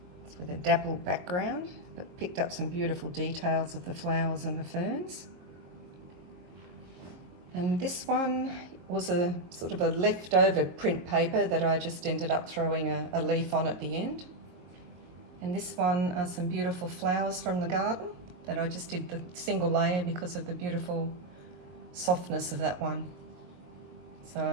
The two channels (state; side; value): late; left; 22 ms